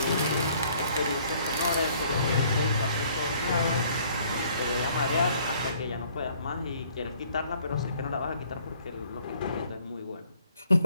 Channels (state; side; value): inverted; both; correlation -0.61